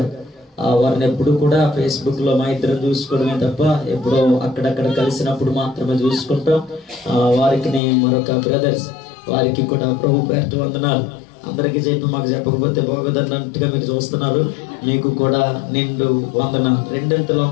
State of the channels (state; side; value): drops out; right; at 7.8 s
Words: వారిని ఎప్పుడు కూడా ఫేస్బుక్ లో మా ఇద్దరు చూసుకోవడమే తప్ప ఎప్పుడో అక్కడక్కడ కలిసినప్పుడు మాత్రమే చూసుకుంటాం. వారికి మరొక బ్రదర్స్, వారికి కూడా ప్రభు పేరిట వందనాలు. అందరికీ చెప్పి మాకు చెప్పకపోతే బాగోదన్నట్టుగా మీరు చూస్తున్నారు. మీకు కూడా నిండు వందనాలు, రెండంతల